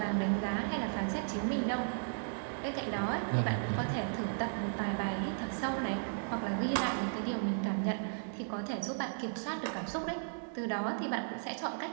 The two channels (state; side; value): silent; left; digital silence